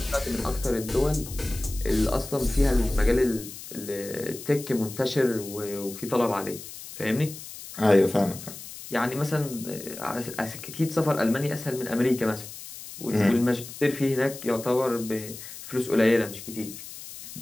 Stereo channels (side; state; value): left; noise; hiss, 13 dB below the sound